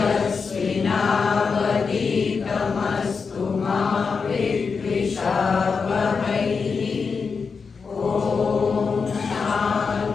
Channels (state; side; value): quieter; right; 5.3 dB